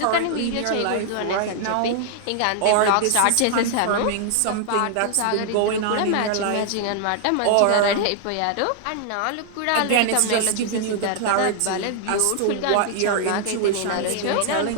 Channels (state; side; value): different; both; correlation 0.00